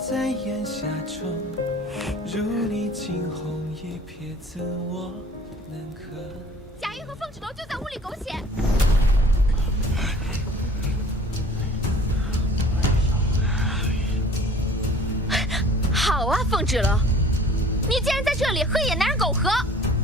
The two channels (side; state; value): both; normal; correlation 0.50